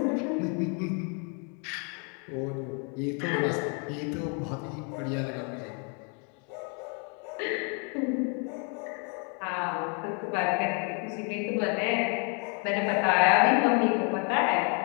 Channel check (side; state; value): right; quieter; 37.6 dB